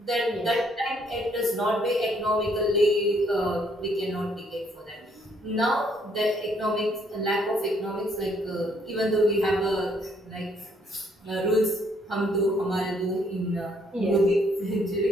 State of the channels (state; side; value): normal; both; correlation 0.68